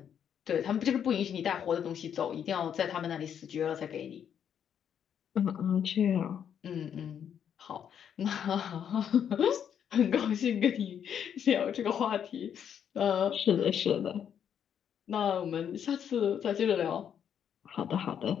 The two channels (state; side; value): quieter; right; 8.6 dB